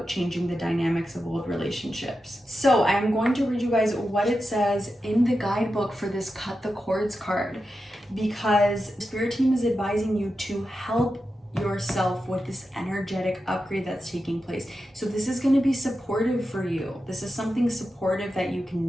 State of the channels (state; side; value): normal; both; correlation 0.90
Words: changing the dynamics of old relationships. So I'm going to read you guys what it says in the guidebook for this Cut the Cords card, because the Spirit team is advising you to help yourself with this energetic upgrade that's taking place. So this is going to be supportive for you. This is something supportive that you